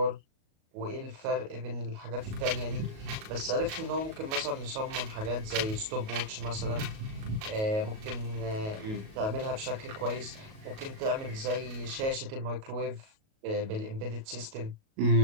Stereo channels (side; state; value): left; late; 37 ms